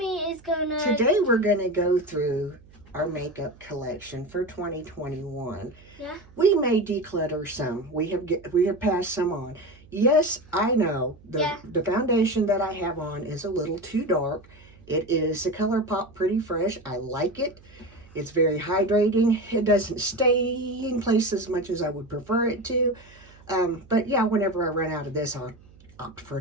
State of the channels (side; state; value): right; noise; hum, 24 dB below the sound